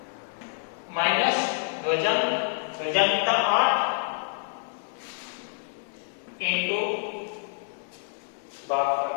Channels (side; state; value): right; silent; digital silence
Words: माइनस ध्वजांक, ध्वजांक कितना? 8 इनटू भागफल